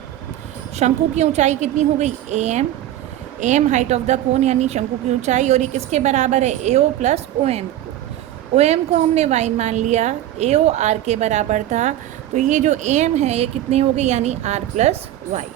शंकु की ऊंचाई कितनी हो गई, AM height of the cone यानी शंकु की ऊंचाई, और ये किसके बराबर है, AO प्लस OM। OM को हमने Y मान लिया, AO R के बराबर था, तो ये जो AM है ये कितनी हो गई, यानी R प्लस Y।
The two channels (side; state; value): left; quieter; 13.0 dB